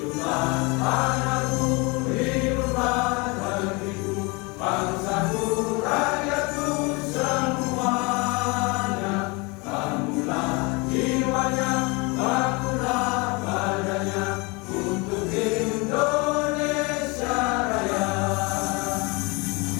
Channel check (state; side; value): quieter; right; 27.8 dB